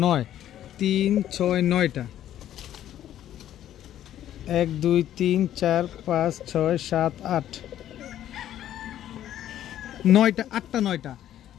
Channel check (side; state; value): right; quieter; 11.7 dB